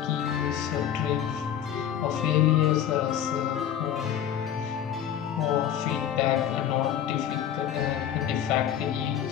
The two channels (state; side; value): quieter; right; 9.8 dB